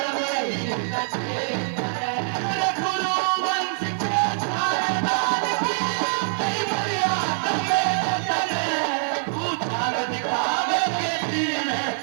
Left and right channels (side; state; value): left; silent; digital silence